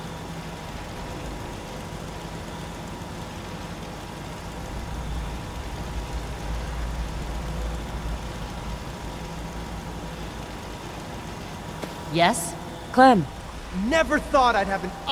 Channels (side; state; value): both; identical; correlation 1.00